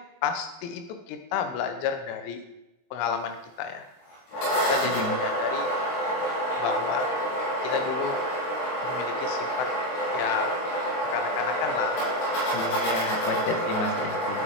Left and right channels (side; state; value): right; late; 23 ms